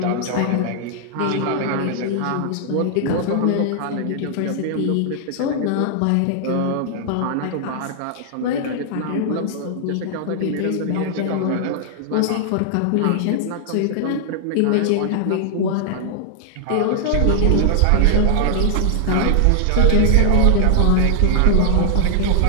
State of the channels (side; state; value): both; different; correlation 0.00